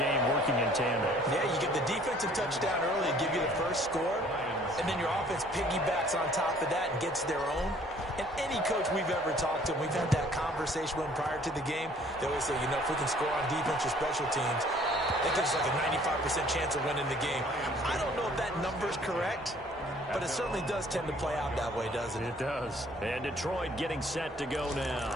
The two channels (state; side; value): normal; both; correlation 0.57